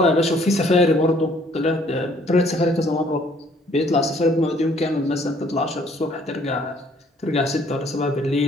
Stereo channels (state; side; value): normal; both; correlation 0.61